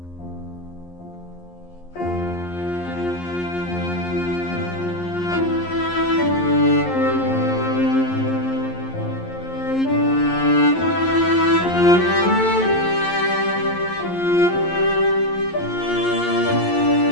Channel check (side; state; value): right; late; 11 ms